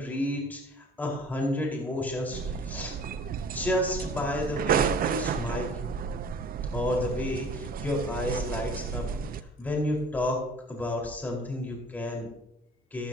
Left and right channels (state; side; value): normal; both; correlation 0.47